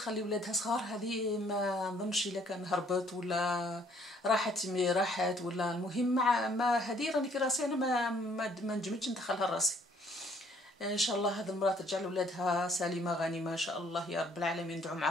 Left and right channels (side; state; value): both; normal; correlation 0.62